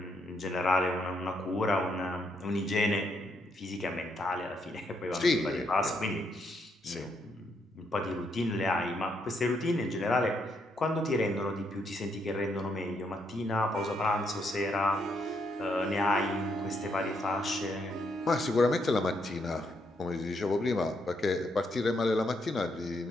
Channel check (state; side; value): normal; both; correlation 0.76